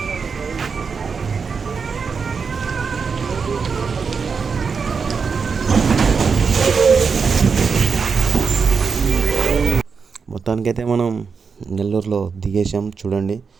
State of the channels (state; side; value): quieter; left; 5.5 dB